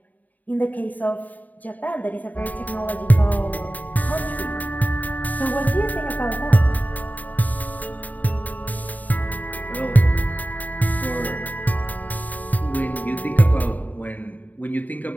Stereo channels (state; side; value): late; right; 0.079 ms